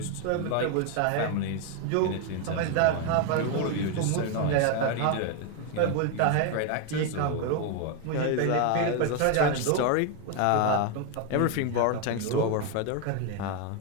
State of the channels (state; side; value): different; both; correlation 0.01